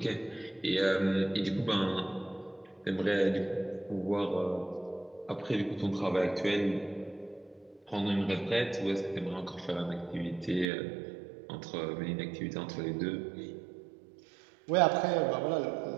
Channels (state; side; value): drops out; left; at 10.7 s